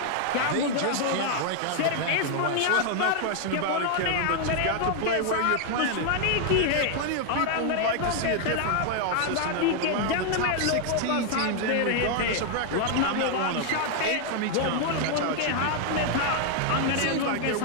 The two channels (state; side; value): different; both; correlation 0.00